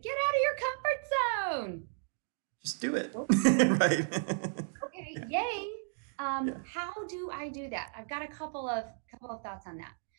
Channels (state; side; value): silent; left; digital silence